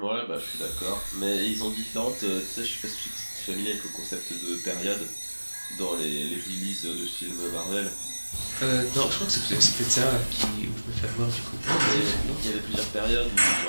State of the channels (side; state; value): both; inverted; correlation -1.00